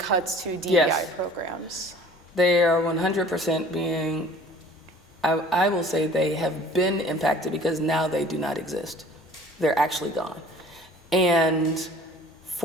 to DEI Yes. programs? They are 100% being, I will say they have been impacted because now they do not exist. They're actually gone. And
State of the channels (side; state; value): both; normal; correlation 0.50